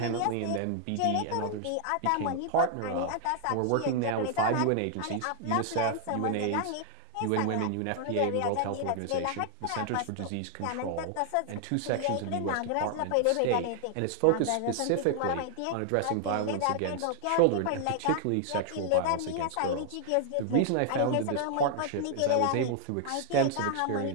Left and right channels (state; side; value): different; both; correlation 0.00